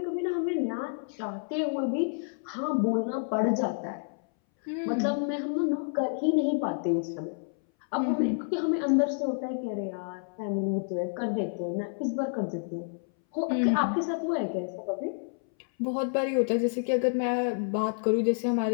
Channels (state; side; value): silent; right; 58 dB below the other